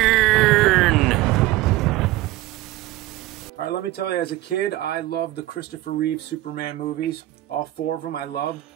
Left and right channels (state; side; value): quieter; left; 16.9 dB